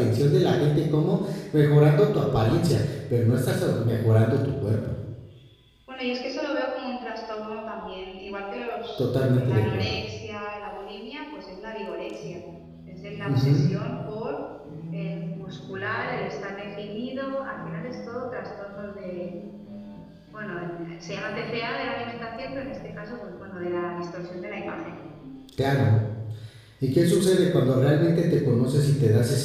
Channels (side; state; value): both; identical; correlation 1.00